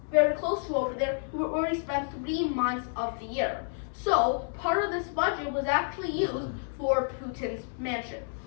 very close to over there where he spent 3 months of the year. So part of this budget was actually used for Putin's mansion.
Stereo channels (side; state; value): right; silent; 58 dB below the other